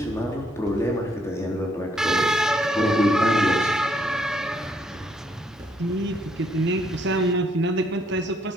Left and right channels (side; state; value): both; normal; correlation 0.71